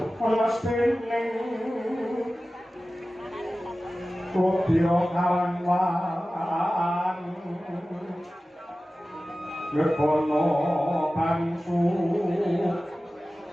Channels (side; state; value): both; normal; correlation 0.96